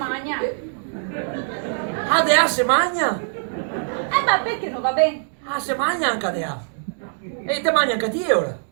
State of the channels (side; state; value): left; silent; digital silence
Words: Dea se magna? Ma perché non va bene? Se magna anche Dea. E te mangia anche te ora?